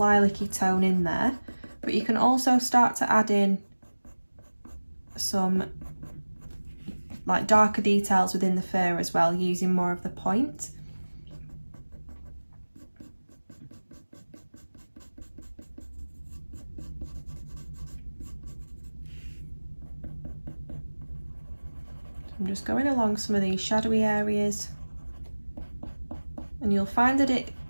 tone in there. But you can also start to add in some like darker details within the fur as well, using more of the point. I'm just going along some of these shadowy areas, and you'll find that it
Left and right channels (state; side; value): inverted; both; correlation -1.00